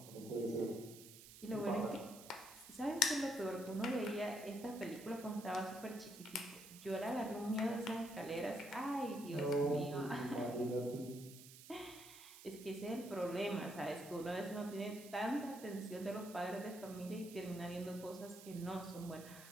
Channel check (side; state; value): right; noise; hiss, 16 dB below the sound